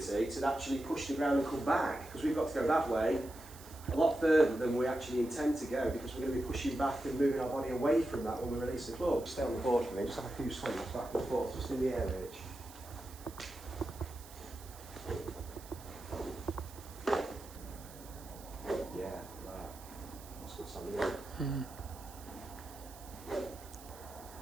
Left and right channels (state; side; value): noise; right; hiss, 18 dB below the sound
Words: to actually push the ground and come back, because we've got to go that way a lot further than we actually intend to go, because we're going to be pushing back and moving our body away from that when we release the club. Stay on the board for me, just have a few swings back and forth, just in the air, Rich. Yeah, that. That's good something, isn't it?